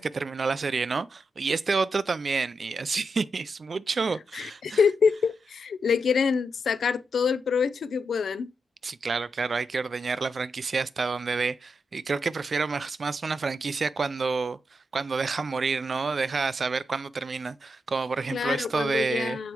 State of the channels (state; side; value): normal; both; correlation 0.85